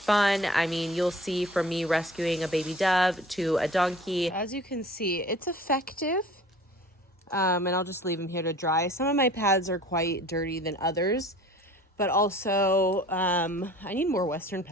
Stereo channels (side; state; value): both; normal; correlation 0.46